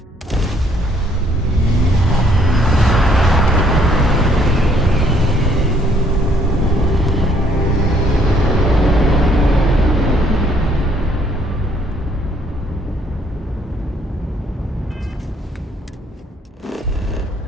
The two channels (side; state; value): both; normal; correlation 0.65